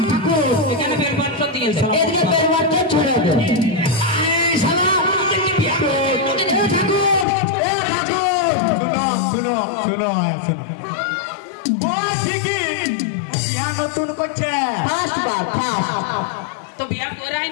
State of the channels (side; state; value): right; drops out; at 7.2 s